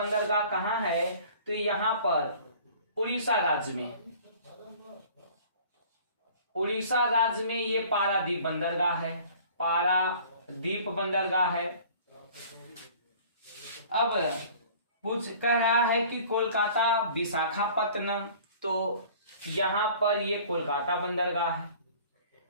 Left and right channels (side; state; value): both; inverted; correlation -0.49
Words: कहाँ है, तो यहाँ पर उड़ीसा राज्य में। उड़ीसा राज्य में ये पारादीप बंदरगाह है, पारादीप बंदरगाह है। अब कह रहा है कि कोलकाता, विशाखापत्तनम। तो यहाँ पर ये कोलकाता बंदरगाह है,